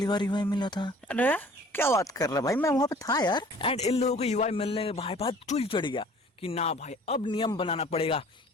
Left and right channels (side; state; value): both; normal; correlation 0.50